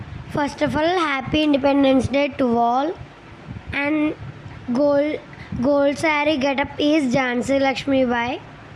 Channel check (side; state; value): both; identical; correlation 1.00